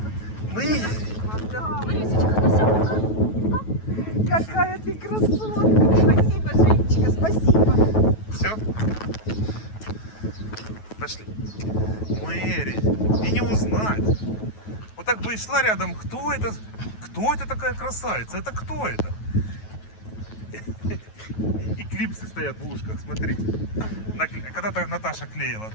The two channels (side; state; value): right; late; 9.3 ms